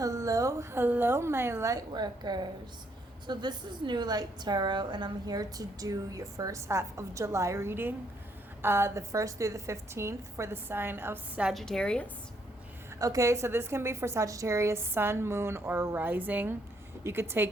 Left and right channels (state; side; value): normal; both; correlation 0.72